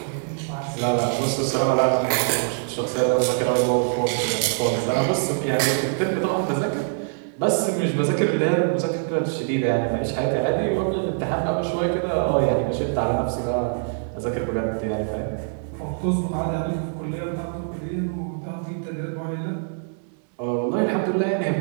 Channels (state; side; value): silent; left; digital silence